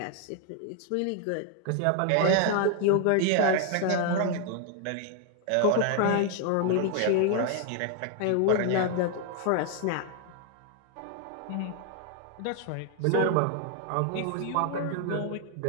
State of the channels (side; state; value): both; different; correlation 0.00